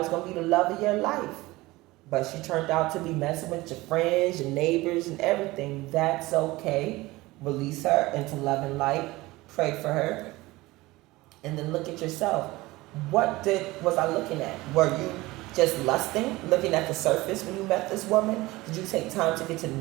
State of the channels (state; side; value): quieter; left; 19.9 dB